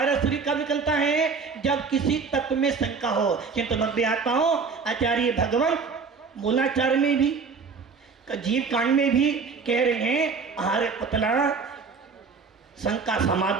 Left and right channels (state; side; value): quieter; left; 5.1 dB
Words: शरीर कब निकलता है? जब किसी तत्व में शंका हो। किंतु भव्य आत्माओं आचार्य भगवान मूलाचार में भी, जीव कांड में भी कह रहे हैं आहर पुतला शंका